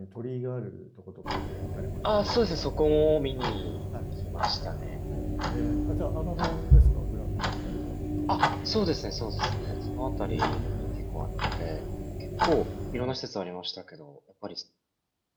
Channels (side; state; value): both; identical; correlation 1.00